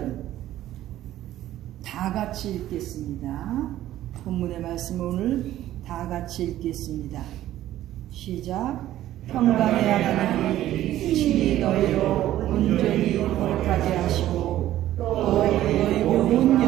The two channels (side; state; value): left; quieter; 13.6 dB